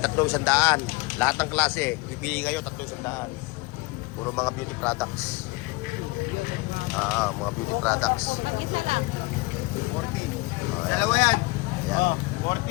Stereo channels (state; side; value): quieter; right; 24.3 dB